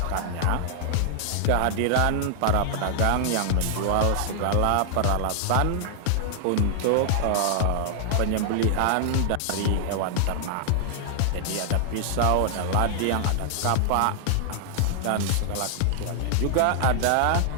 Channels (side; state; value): both; different; correlation 0.00